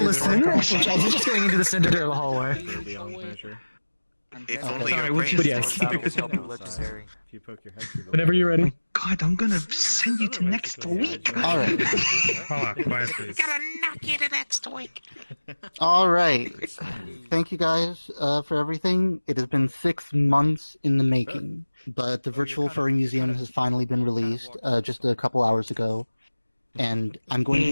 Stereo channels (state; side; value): inverted; both; correlation -1.00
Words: He's just going into the center of the hallway. It's only Sorry, your which brain. yes. Legendary. Whenever you're ready. God, I'm gonna send you to next week. All right. Hold on, quiet please. Gotta knock you to next week. All right. Thank you guys for everything. It has been 6 months in the making, but the virtual furry museum has finally been released just a couple hours ago, and I'm going to